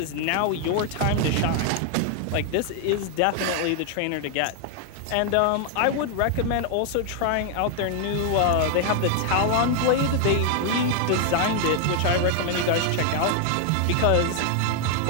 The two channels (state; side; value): different; both; correlation 0.00